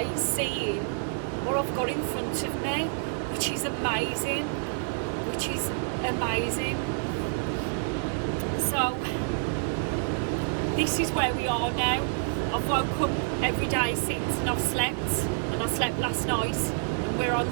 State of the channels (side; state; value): left; silent; digital silence